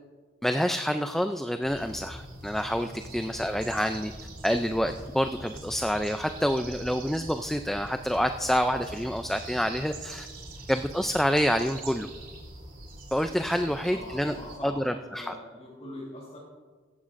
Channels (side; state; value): both; normal; correlation 0.90